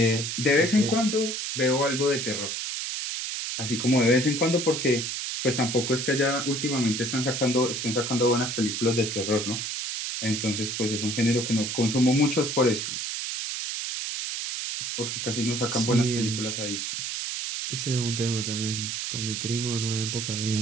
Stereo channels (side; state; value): right; noise; hiss, 3 dB below the sound